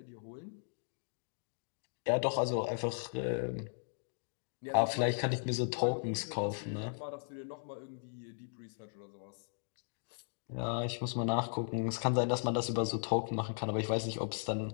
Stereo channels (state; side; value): silent; right; digital silence